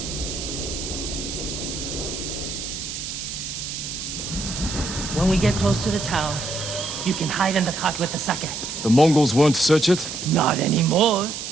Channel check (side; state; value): right; noise; hiss, 6 dB below the sound